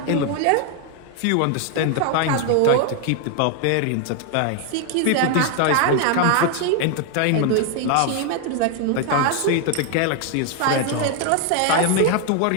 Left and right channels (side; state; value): both; different; correlation 0.00